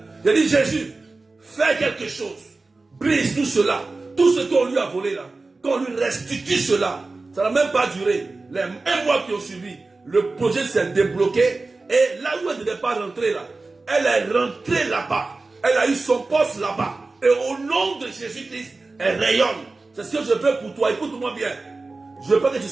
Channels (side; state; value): left; quieter; 3.5 dB